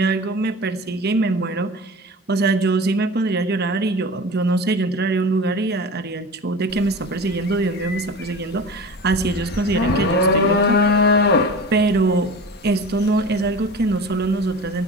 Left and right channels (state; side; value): normal; both; correlation 0.34